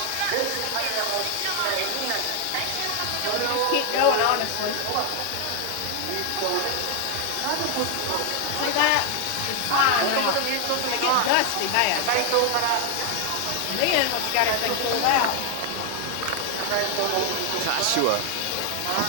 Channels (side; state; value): both; different; correlation 0.00